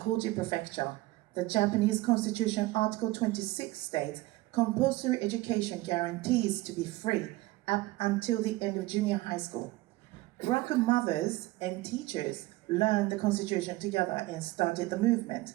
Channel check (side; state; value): left; quieter; 19.1 dB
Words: Prefecture. The Japanese Constitution Article 26 states, compulsory education guarantees to be free up until the end of junior high school. Buraku mothers and teachers learned the Constitution together and started the movement.